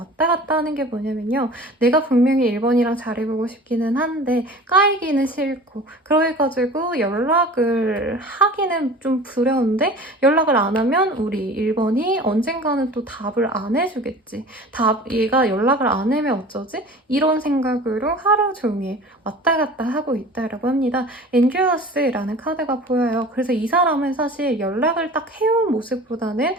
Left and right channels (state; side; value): normal; both; correlation 0.41